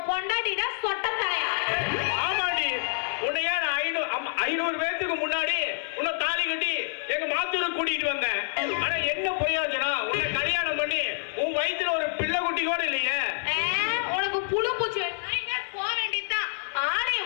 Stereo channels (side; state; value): right; silent; digital silence